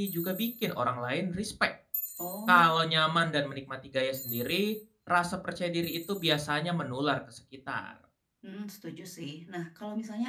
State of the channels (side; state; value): both; identical; correlation 1.00